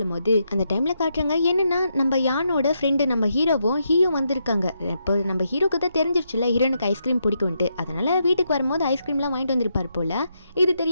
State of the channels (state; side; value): inverted; both; correlation -0.81